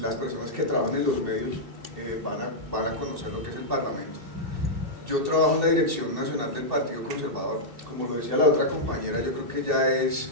las personas que trabajan en los medios van a conocer lo que es el Parlamento. Yo trabajo en la Dirección Nacional del Partido Conservador. Como lo decía la otra compañera, yo creo que ya es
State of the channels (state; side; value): late; left; 2.7 ms